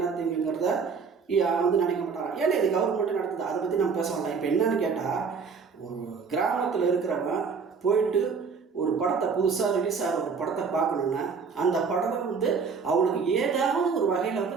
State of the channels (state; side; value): quieter; left; 5.5 dB